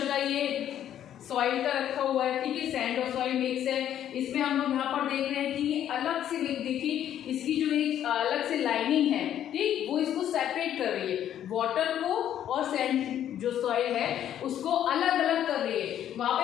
का ये सॉइल का रखा हुआ है, ठीक है, सैंड और सॉइल मिक्स है, इसमें हम लोग यहाँ पर देख रहे हैं कि अलग से देखिए इसकी जो एक अलग से लाइनिंग है, ठीक, वो इसको सेपरेट कर रही है, वाटर को और सैंड जो सॉइल है उसको अलग अलग कर रही है। वहां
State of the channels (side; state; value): right; quieter; 10.7 dB